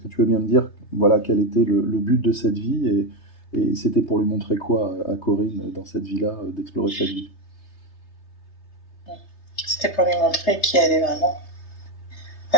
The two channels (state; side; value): late; right; 3.3 ms